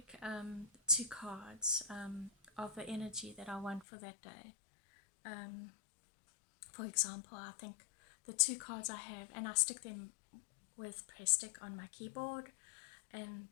2 cards of the energy that I want for that day. For example, I think the 2 cards I have, and I stick them with press stick on my keyboard, and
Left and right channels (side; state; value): right; drops out; at 3.9 s